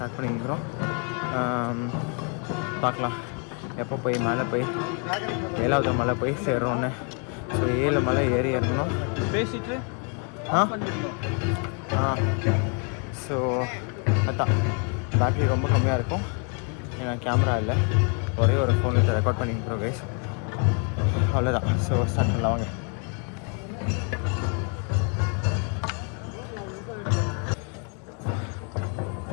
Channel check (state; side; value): quieter; right; 38.9 dB